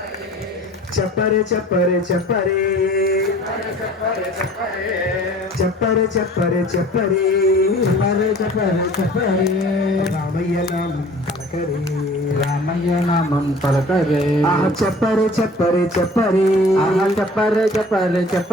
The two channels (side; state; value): both; normal; correlation 0.47